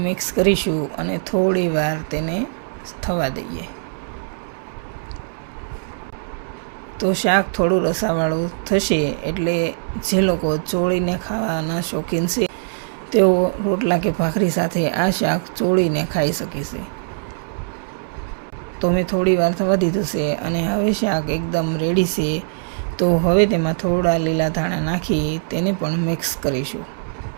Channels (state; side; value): silent; left; digital silence